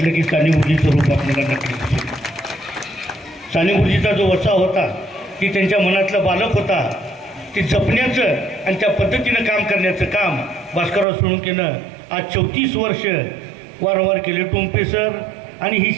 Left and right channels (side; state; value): left; drops out; at 11.1 s